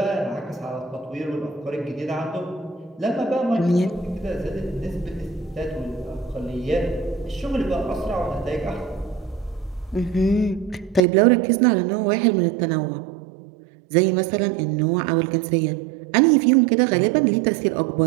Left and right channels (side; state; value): left; drops out; at 11.0 s